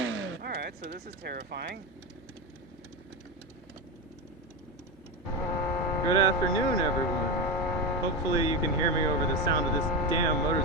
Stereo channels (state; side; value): normal; both; correlation 0.16